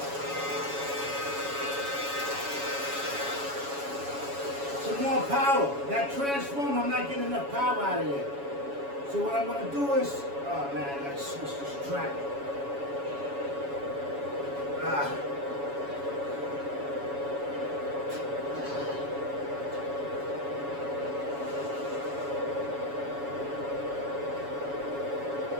some more power. That transformer, I'm not getting enough power out of it. So what I'm gonna do is, oh man, I gotta switch this track.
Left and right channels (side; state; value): left; late; 7.1 ms